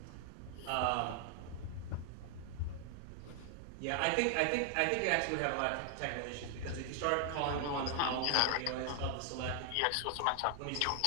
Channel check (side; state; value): both; different; correlation 0.00